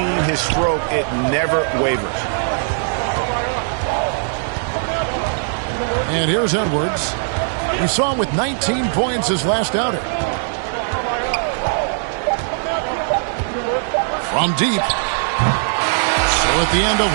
his stroke, it never wavers. And here's Edwards. We saw him with 19 points his last outing. From deep. So at the end of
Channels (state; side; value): silent; left; 56 dB below the other